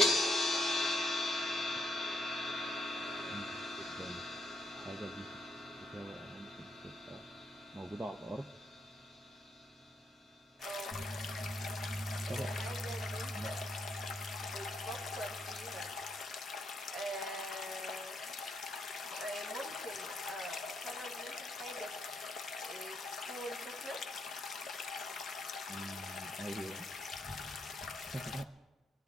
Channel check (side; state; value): both; normal; correlation 0.75